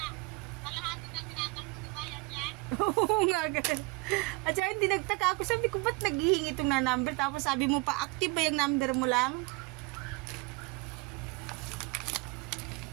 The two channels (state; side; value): quieter; left; 25.0 dB